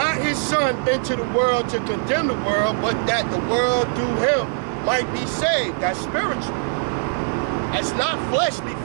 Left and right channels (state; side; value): silent; left; 59 dB below the other